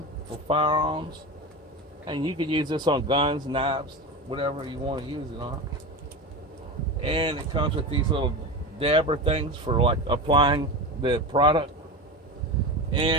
for firearms, and you can use this on guns, knives, whatever you want to use it on. And it comes with these little dabber things for like applying the product.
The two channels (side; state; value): both; normal; correlation 0.24